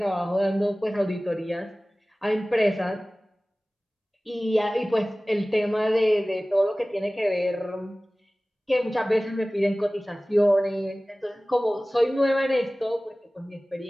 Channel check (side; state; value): both; normal; correlation 0.98